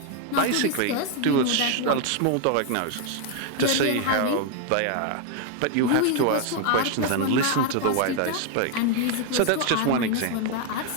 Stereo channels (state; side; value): different; both; correlation 0.01